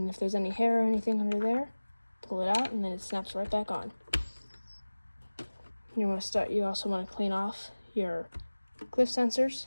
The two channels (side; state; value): both; inverted; correlation -1.00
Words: if there's any hair or anything under there, pull it out and then it snaps right back on. You also want to clean off your cliff sensors